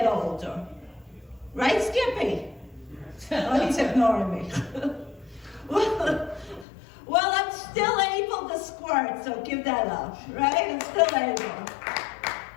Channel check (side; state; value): right; drops out; at 6.7 s